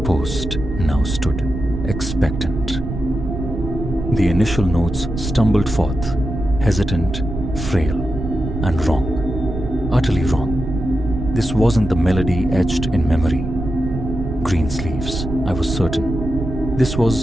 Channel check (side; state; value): right; noise; rumble, 6 dB below the sound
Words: now stood, expectant. The initial notes stumbled forth, hesitant, frail, and wrong. Utterly wrong. This wasn't the melody etched in memory. Greensleeves, I was certain. This